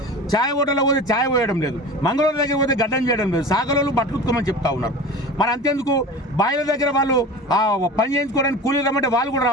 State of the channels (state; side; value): normal; both; correlation 0.34